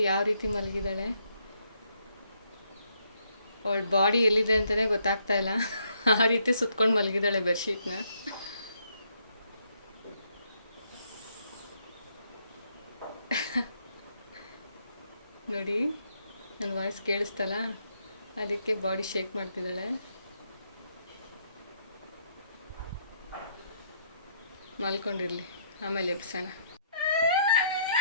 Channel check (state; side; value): inverted; both; correlation -0.72